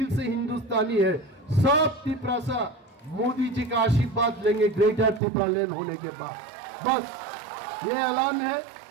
से हिंदुस्तानी है। सब त्रिपुरा मोदी जी का आशीर्वाद लेंगे ग्रेटर त्रिपुरालैंड होने के बाद। बस ये ऐलान है।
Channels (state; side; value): drops out; left; at 5.2 s